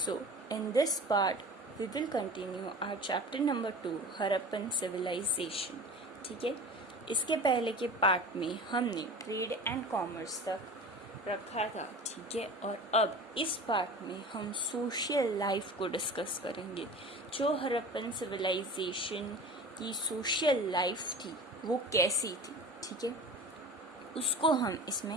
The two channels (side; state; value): both; normal; correlation 0.37